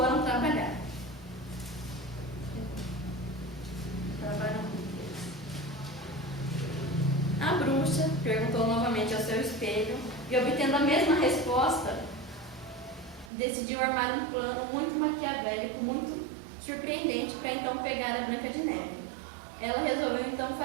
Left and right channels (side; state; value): left; drops out; at 13.3 s